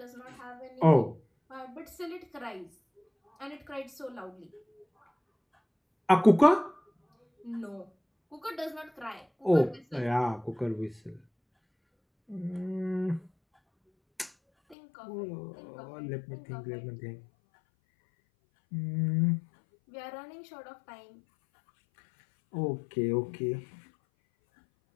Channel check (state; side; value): drops out; right; at 14.8 s